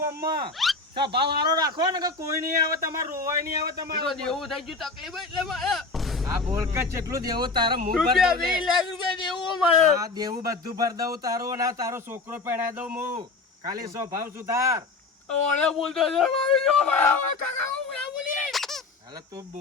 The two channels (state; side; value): quieter; right; 3.9 dB